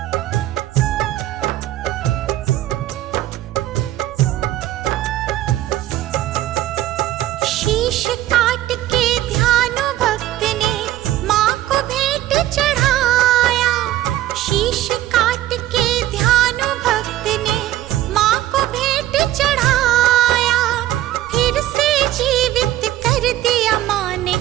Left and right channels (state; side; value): quieter; left; 14.2 dB